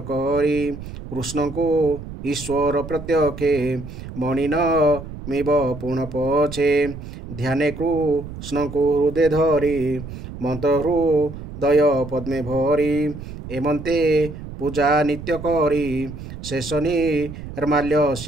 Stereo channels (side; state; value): right; noise; rumble, 11 dB below the sound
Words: करी कृष्ण को ईश्वर प्रत्यक्षे मणिन मिब पुण पछे ध्याने कृष्ण को हृदय धरी मंत्र हृदय पद्मे भरी एमंते पूजा नित्य करी शेष निर्माल्य